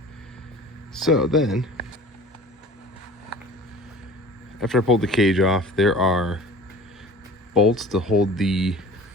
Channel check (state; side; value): normal; both; correlation 0.42